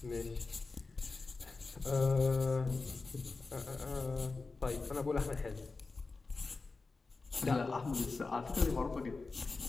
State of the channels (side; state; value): right; quieter; 3.9 dB